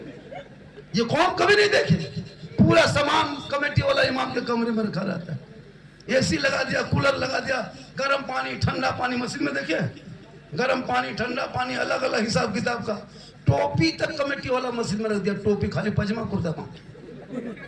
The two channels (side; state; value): both; identical; correlation 1.00